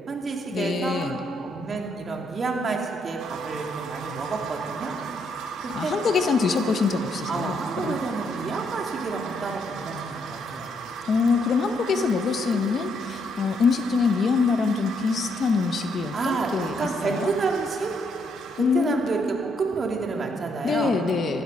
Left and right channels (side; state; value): both; normal; correlation 0.74